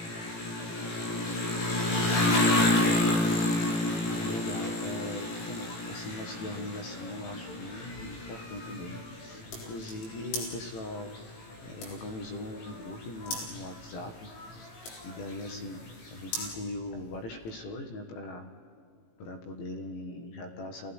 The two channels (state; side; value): late; right; 18 ms